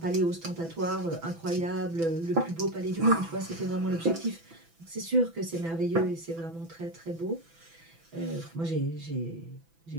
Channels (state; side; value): late; left; 6.0 ms